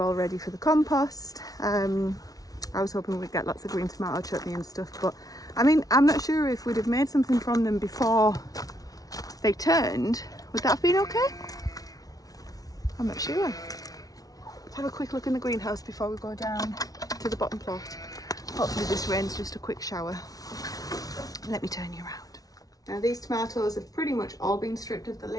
ready for the compost. I was hoping we'd get lots of green tomato chutney and stuff, but I mean, I'm not sure if we'd have made something from them before they turned. Would that have been okay? I'm not sure. Let's have a quick look in the greenhouse before we go down to the bottom plot. Hopefully this rain's just a quick shower. Let me turn you around. Now these tomatoes have pretty much all been stripped of the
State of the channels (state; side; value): late; right; 0.18 ms